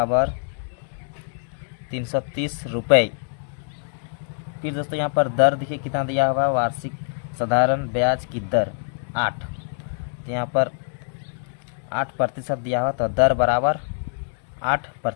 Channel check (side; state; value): right; silent; digital silence